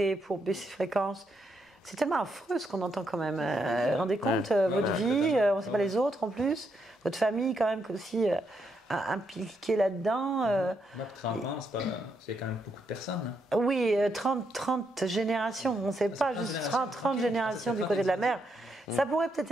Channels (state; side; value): normal; both; correlation 0.79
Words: pour baisser fréquence. C'est tellement affreux ce qu'on entend quand même. Rendez compte, votre vie, on ne sait pas les autres en plus, votre famille quand même aussi impliquée là-dedans. 30 ans, c'est quand même beaucoup de personnes. Hein. Oui, 30 générations, on ne sait pas, juste 30 générations du côté de la mer. Ça pourrait peut-être